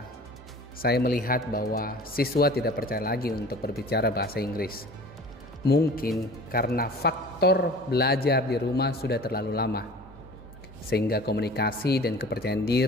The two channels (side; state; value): both; normal; correlation 0.43